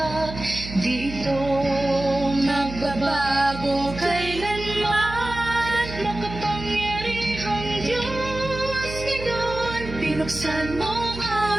Dito magbabago kailanman. Makapangyarihang Diyos, ngayon pinuksan mo ang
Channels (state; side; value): noise; right; hum, 10 dB below the sound